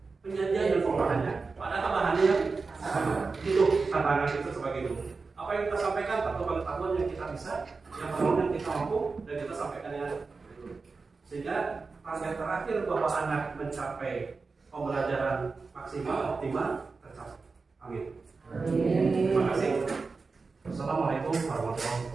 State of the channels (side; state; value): left; quieter; 4.3 dB